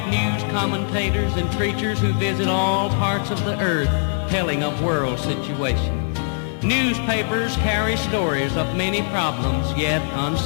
news commentators and preachers who visit all parts of the earth telling of world situations. Newspapers carry stories of many problems yet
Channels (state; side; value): silent; right; digital silence